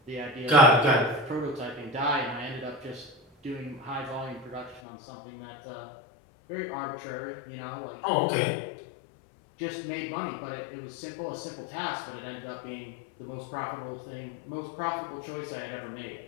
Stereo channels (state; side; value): drops out; right; at 4.8 s